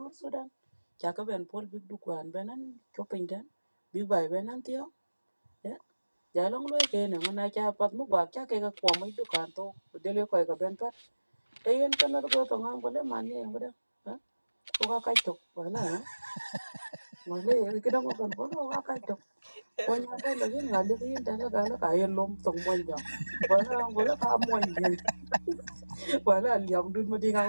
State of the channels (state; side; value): inverted; both; correlation -1.00